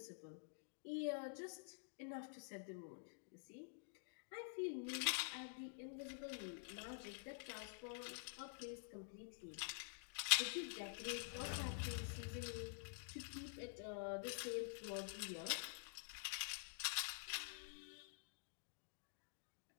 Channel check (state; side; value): silent; right; digital silence